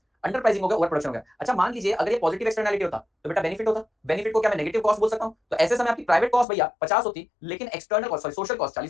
अंडर प्राइसिंग हो गया, ओवर प्रोडक्शन हो गया। अच्छा मान लीजिए अगर ये पॉजिटिव एक्सटर्नैलिटी होता तो बेटा बेनिफिट होता, बेनिफिट को क्या मैं नेगेटिव कॉस्ट बोल सकता हूं। तो ऐसे समय आपकी प्राइवेट कॉस्ट भैया 50 होती, लेकिन external cost sorry social cost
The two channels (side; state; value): right; drops out; at 6.5 s